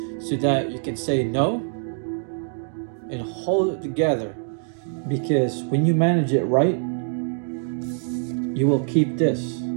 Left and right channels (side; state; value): left; silent; digital silence